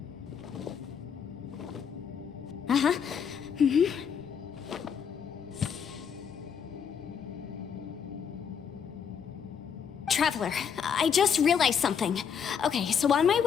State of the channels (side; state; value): right; quieter; 7.2 dB